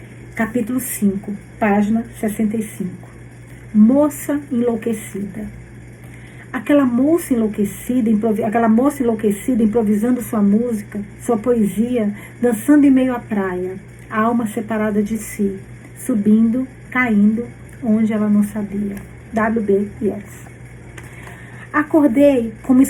Capítulo 5, página 65. Moça enlouquecida. Aquela moça enlouquecida improvisando sua música, sua poesia, dançando em meio à praia, a alma separada de si, subindo, caindo, onde ela não sabia. W.B. Yeats. Acordei com uma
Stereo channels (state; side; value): identical; both; correlation 1.00